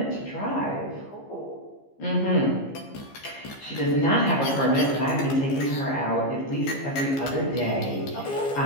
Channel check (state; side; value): late; right; 15 ms